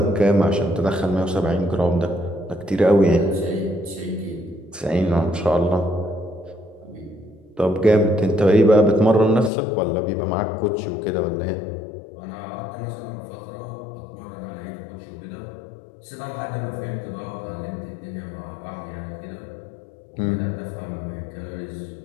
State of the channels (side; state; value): right; drops out; at 9.5 s